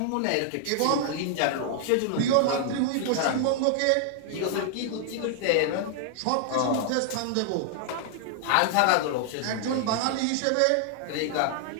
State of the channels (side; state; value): both; different; correlation 0.00